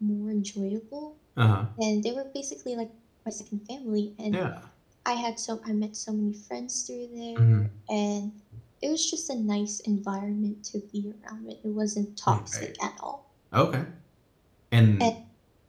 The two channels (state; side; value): identical; both; correlation 1.00